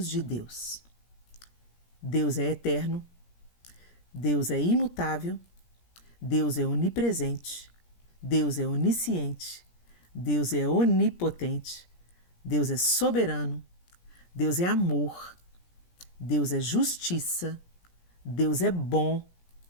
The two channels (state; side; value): late; right; 17 ms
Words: de Deus. Deus é eterno, Deus é imutável, Deus é onipresente, Deus é onisciente, Deus é onipotente, Deus é soberano, Deus é amor, Deus é justiça, Deus é bom,